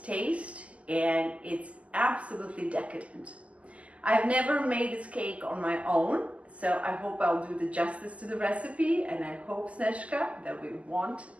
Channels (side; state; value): left; late; 0.065 ms